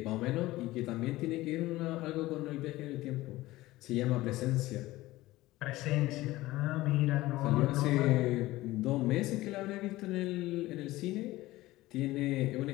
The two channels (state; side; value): quieter; right; 17.8 dB